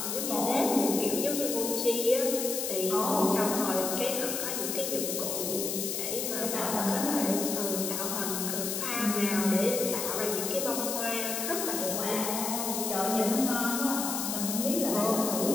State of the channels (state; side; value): noise; left; hiss, 2 dB below the sound